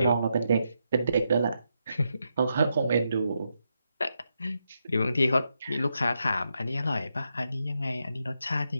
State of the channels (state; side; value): inverted; both; correlation -0.83